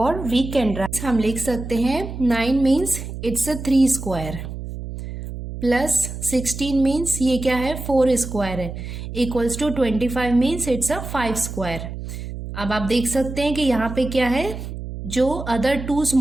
वी कैन राइट, हम लिख सकते हैं 9 means it's a 3 square plus 16 means ये क्या है? 4 स्क्वायर है, equals to 25 means it's a 5 square. अब आप देख सकते हैं कि यहाँ पे क्या है? जो अदर 2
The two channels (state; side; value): noise; right; hum, 8 dB below the sound